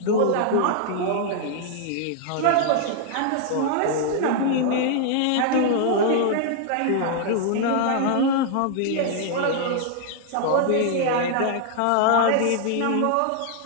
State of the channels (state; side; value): different; both; correlation -0.01